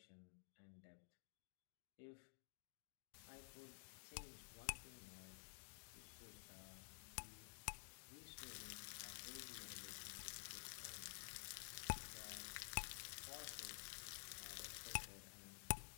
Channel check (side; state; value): right; silent; digital silence